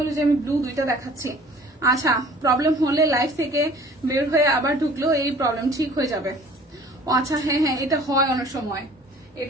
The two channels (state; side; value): normal; both; correlation 0.50